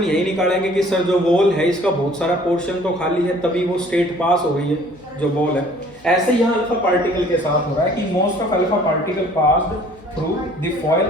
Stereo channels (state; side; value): noise; left; hum, 28 dB below the sound